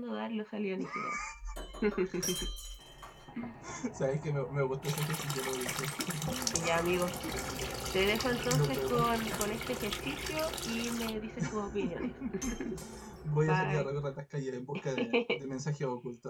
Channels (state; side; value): identical; both; correlation 1.00